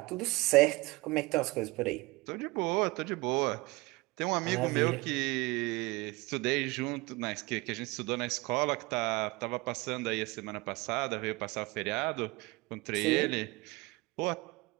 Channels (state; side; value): quieter; left; 23.3 dB